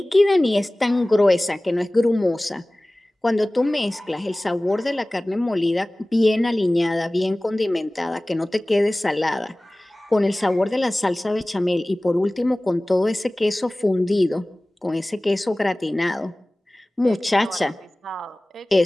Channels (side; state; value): both; normal; correlation 0.98